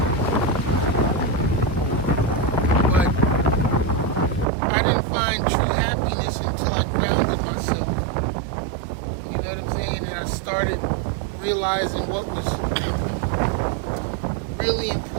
But I didn't find true happiness until I grounded myself. You know what I'm saying? And I started realizing what was really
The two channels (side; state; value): left; drops out; at 4.5 s